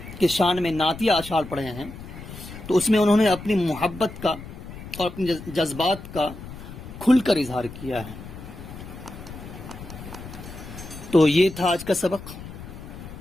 کے شان میں نعتیہ اشعار پڑھے ہیں، تو اس میں انہوں نے اپنی محبت کا اور اپنے جذبات کا کھل کر اظہار کیا ہے۔ تو یہ تھا آج کا سبق۔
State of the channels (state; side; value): noise; left; rumble, 13 dB below the sound